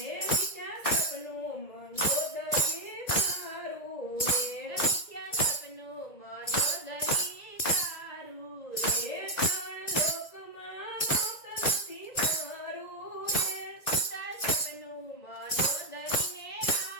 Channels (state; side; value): late; right; 1.9 ms